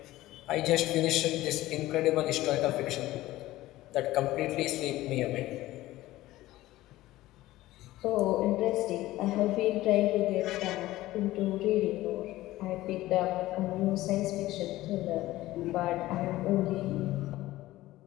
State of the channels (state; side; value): quieter; right; 16.6 dB